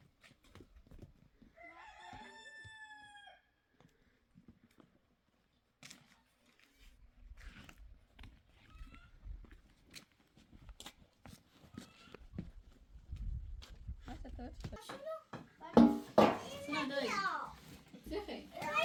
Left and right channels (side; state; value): both; identical; correlation 1.00